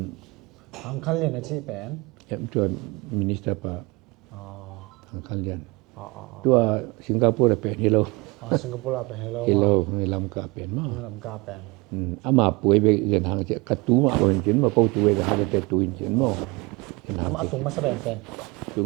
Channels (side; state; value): left; quieter; 25.2 dB